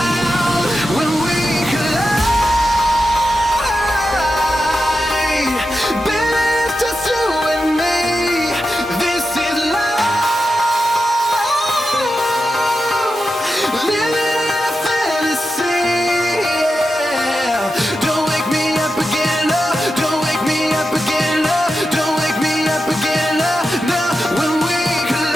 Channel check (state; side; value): normal; both; correlation 0.89